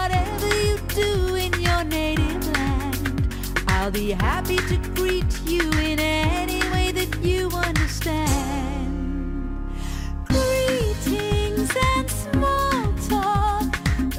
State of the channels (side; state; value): both; identical; correlation 1.00